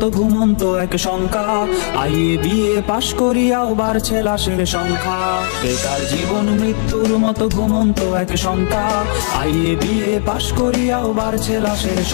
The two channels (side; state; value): right; silent; 56 dB below the other